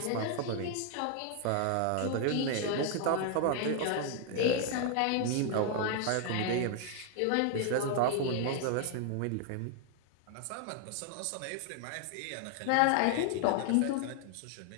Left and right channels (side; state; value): both; different; correlation 0.00